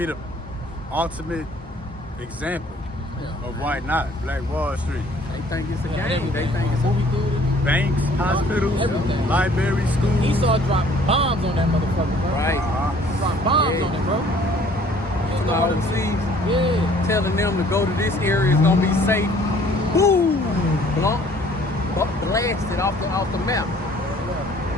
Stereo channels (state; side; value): normal; both; correlation 0.56